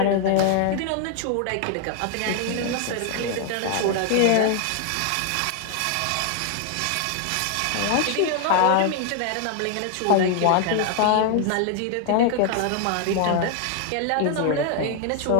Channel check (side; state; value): both; different; correlation 0.00